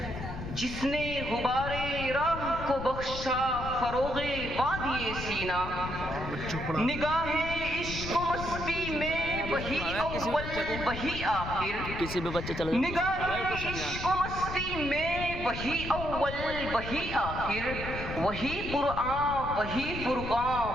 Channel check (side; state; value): left; noise; rumble, 7 dB below the sound